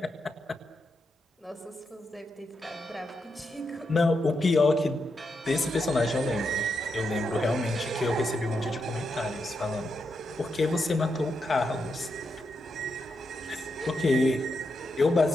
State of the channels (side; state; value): both; normal; correlation 0.84